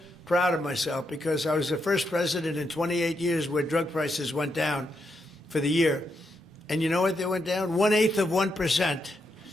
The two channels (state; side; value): normal; both; correlation 0.81